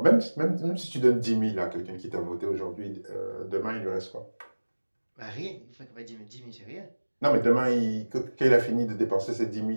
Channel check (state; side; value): inverted; both; correlation -1.00